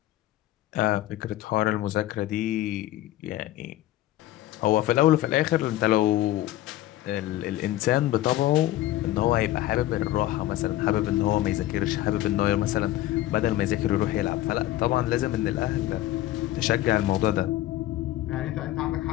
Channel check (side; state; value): right; quieter; 14.8 dB